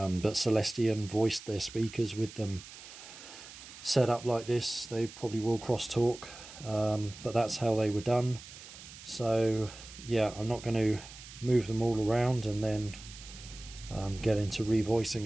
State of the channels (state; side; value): noise; right; hiss, 16 dB below the sound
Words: Celestion voiced their speakers with them set up like this. They probably will crosstalk, but that's how they were done. So yeah, I'm not going to move them all around and then get into revoicing